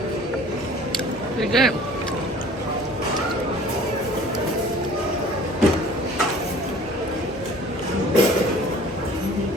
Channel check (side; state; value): both; normal; correlation 0.48